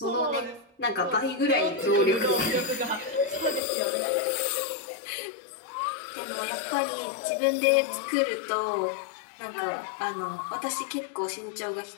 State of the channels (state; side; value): drops out; right; at 3.6 s